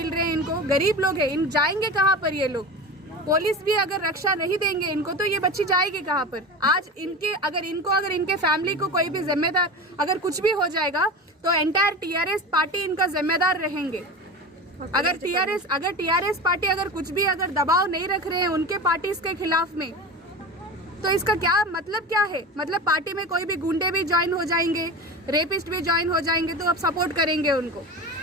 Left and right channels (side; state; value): both; normal; correlation 0.28